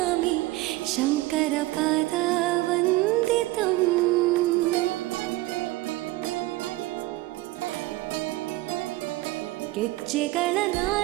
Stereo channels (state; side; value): quieter; left; 18.9 dB